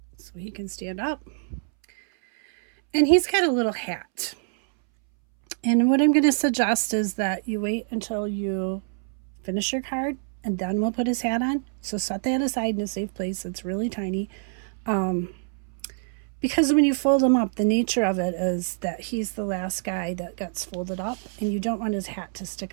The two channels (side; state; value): left; silent; 61 dB below the other